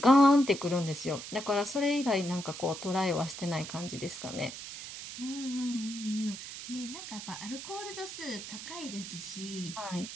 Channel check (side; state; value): right; noise; hiss, 10 dB below the sound